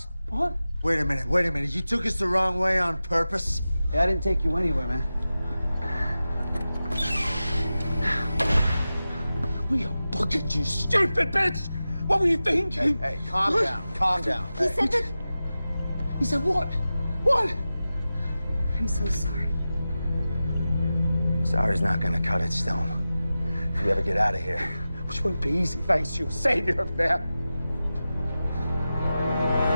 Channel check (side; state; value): both; inverted; correlation -0.94